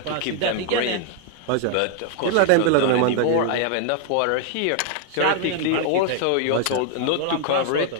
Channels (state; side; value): different; both; correlation 0.00